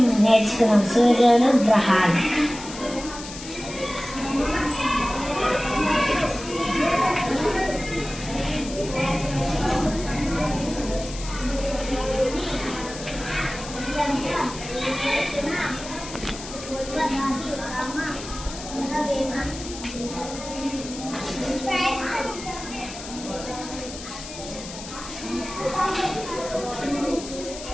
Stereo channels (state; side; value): noise; left; hiss, 12 dB below the sound